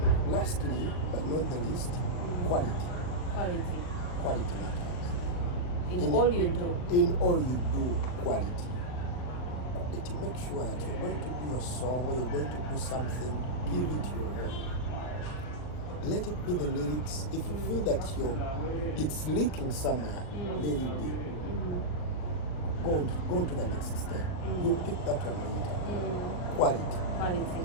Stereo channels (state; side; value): late; right; 39 ms